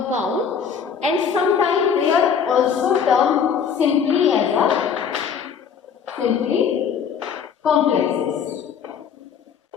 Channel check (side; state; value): right; quieter; 7.1 dB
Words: and sometimes they are also termed simply as a complexes.